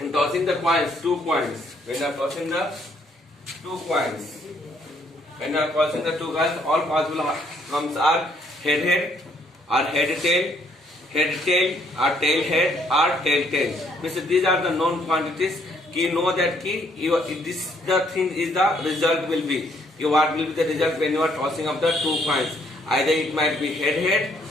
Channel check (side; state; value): both; normal; correlation 0.68